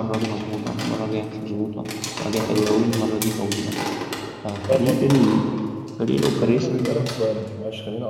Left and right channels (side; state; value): both; identical; correlation 1.00